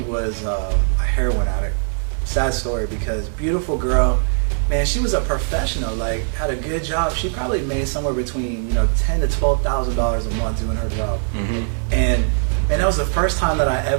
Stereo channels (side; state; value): left; silent; 65 dB below the other